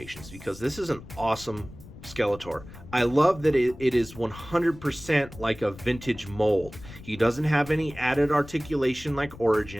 because this is an awesome Skeletor. I love that it is 100% like a vintage mold. He doesn't have any added articulation like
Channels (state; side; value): noise; left; rumble, 17 dB below the sound